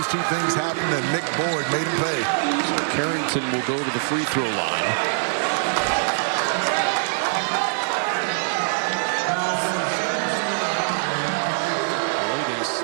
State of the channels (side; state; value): left; silent; digital silence